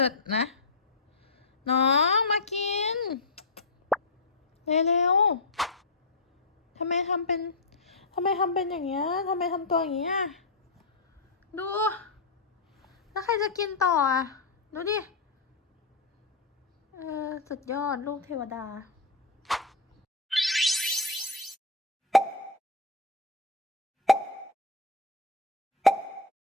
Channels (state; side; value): quieter; right; 3.5 dB